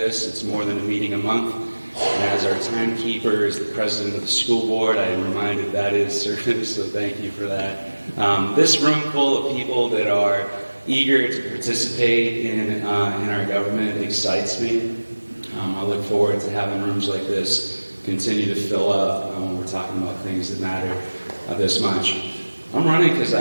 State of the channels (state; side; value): inverted; both; correlation -1.00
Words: it's more than a meeting a month. And as our timekeeper, as the president of the school board, I'm reminded that is service, so thank you for that. This room full of people that are eager to participate in our government excites me. I look forward to having rooms like this continue to fill up when we're talking about things that matter this much. I'm running because